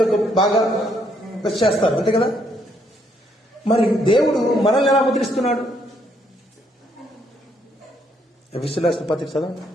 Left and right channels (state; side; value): normal; both; correlation 0.71